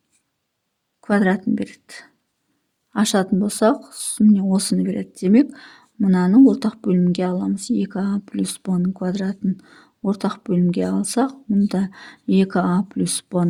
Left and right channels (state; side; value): identical; both; correlation 1.00